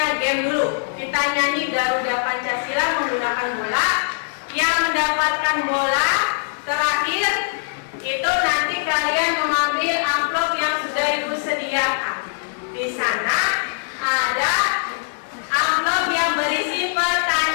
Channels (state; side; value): silent; right; digital silence